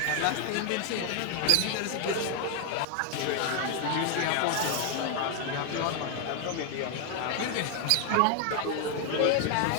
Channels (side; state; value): both; different; correlation 0.00